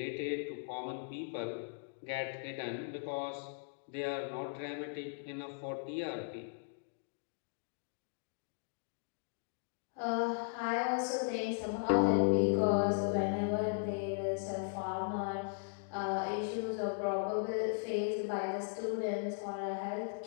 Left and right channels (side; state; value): right; silent; digital silence